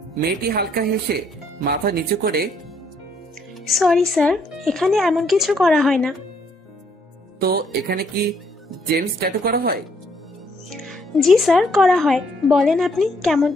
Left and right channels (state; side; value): normal; both; correlation 0.69